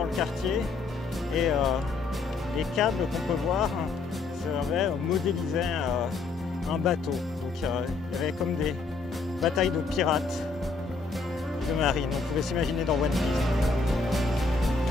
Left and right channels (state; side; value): quieter; right; 4.1 dB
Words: le quartier. Et les câbles qu'on peut voir modélisaient un bateau. Donc il y avait comme des batailles de pirates de marine. On pouvait s'imaginer dans One Piece.